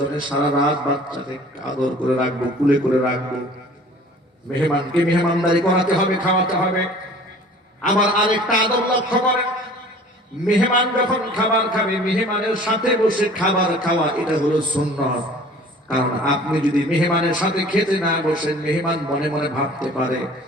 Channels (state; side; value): normal; both; correlation 0.48